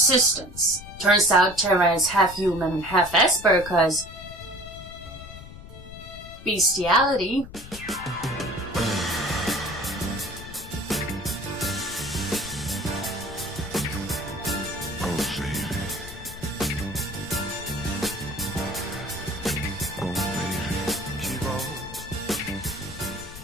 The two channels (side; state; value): left; noise; rumble, 14 dB below the sound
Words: Turns out Terra is half human and half Esper, cause bestiality.